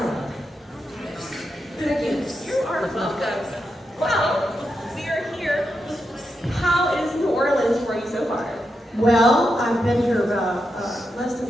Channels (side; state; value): both; normal; correlation 0.86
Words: Thank you. You are welcome. Well, we are here. How is New Orleans for you so far? Well, I've been here less